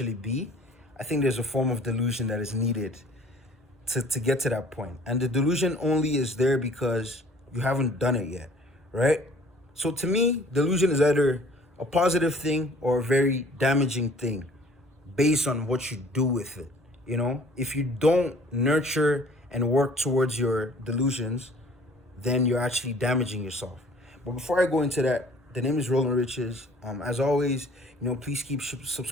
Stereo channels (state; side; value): normal; both; correlation 0.53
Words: be, I think there's a form of delusion that is needed to get to that point. And the delusion only is there because you haven't done it yet, right? So to me, delusion is either a positive thing or a very damaging thing based on what you do with it. If you don't nurture and work towards your delusions, then you're actually damaging yourself. But before I go into that, the name is Roland Riches. As always, please keep